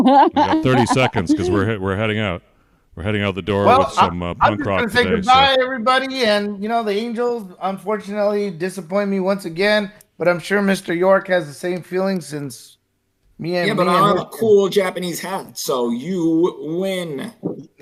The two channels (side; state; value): both; identical; correlation 1.00